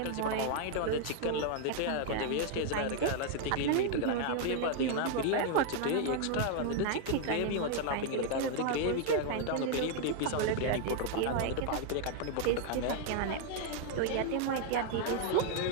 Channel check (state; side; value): different; both; correlation 0.00